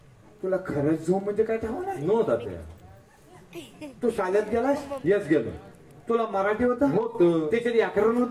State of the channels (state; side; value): identical; both; correlation 1.00